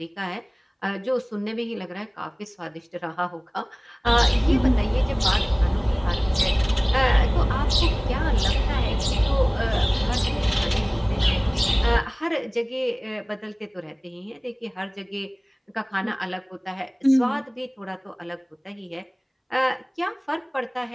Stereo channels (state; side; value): identical; both; correlation 1.00